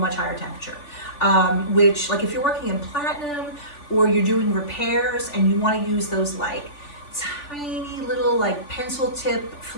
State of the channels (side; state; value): right; late; 3.4 ms